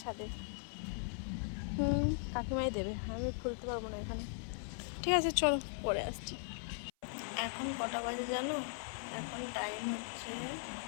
ছাদে, কাকিমাই দেবে, আমি খুলতে পারবো না এখানে। ঠিক আছে চলো পরে আসছি। এখন কটা বাজে জানো? এখন টাইম হচ্ছে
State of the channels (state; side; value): silent; right; 52 dB below the other